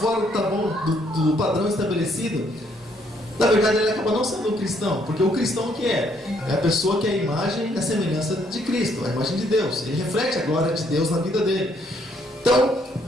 do padrão estabelecido, na verdade, ele acaba não sendo um cristão. Porque o cristão o que é? É a pessoa que é a imagem e a semelhança de Cristo, a imagem de Deus. Ele reflete a glória de Deus na vida dele. Então,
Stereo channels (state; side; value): normal; both; correlation 0.69